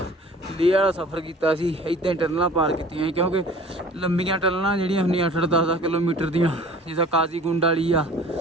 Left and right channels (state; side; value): normal; both; correlation 0.46